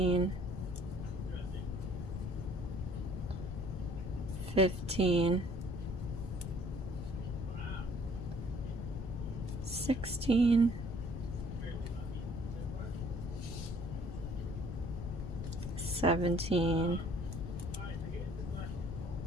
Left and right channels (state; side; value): noise; left; rumble, 5 dB below the sound